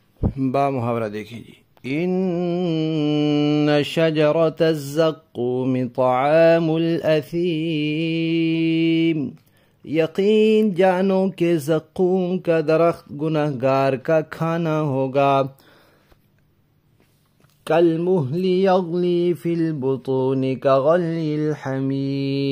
با محاورہ دیکھیں جی، ان شجرۃ الزقوم طعام الاثیم، یقین جانو کہ زقوم کا درخت گنہگار کا کھانا ہوگا، کالمہل یغلی فی البطون کغلی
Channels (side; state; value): both; identical; correlation 1.00